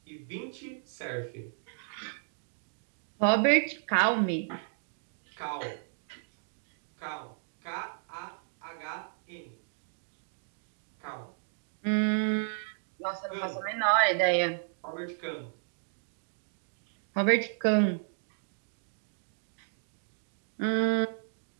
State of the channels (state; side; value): silent; left; digital silence